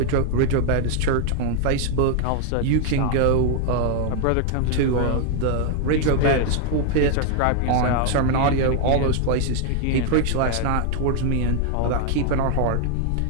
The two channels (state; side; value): different; both; correlation 0.00